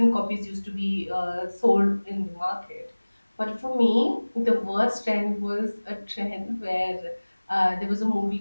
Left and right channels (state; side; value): inverted; both; correlation -1.00